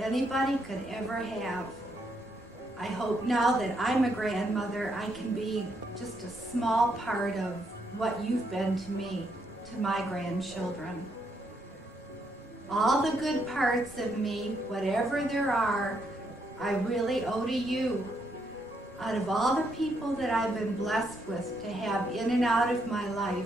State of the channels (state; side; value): normal; both; correlation 0.76